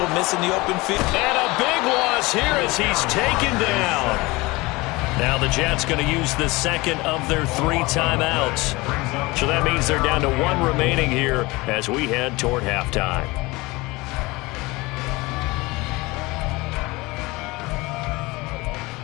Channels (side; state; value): right; quieter; 22.7 dB